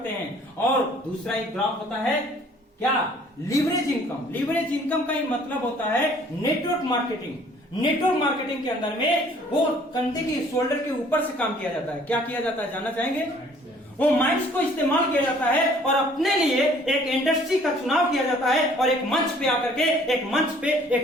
हैं। और दूसरा एक ग्राफ होता है क्या, लीवरेज इनकम। लीवरेज इनकम का ही मतलब होता है नेटवर्क मार्केटिंग। नेटवर्क मार्केटिंग के अंदर में वो कंधे की शोल्डर के ऊपर से काम किया जाता है। क्या किया जाता है जानना चाहेंगे? वो माइंड्स को इस्तेमाल किया जाता है और अपने लिए एक इंडस्ट्री का चुनाव किया जाता है और एक मंच पे आकर के एक मंच पे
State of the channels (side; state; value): both; normal; correlation 0.57